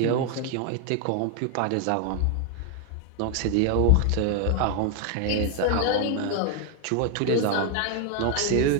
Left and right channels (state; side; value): different; both; correlation 0.01